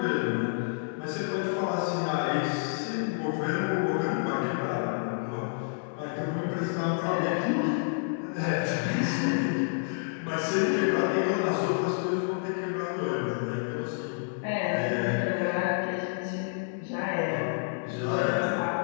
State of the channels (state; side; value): silent; right; digital silence